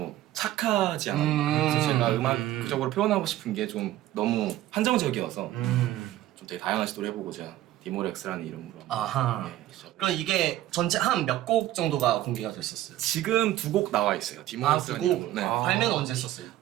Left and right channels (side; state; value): left; quieter; 14.3 dB